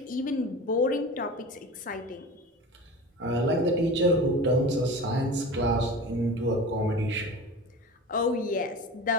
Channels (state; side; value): normal; both; correlation 0.34